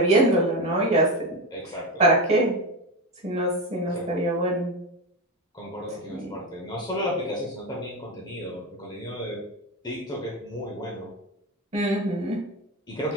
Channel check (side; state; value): both; normal; correlation 0.17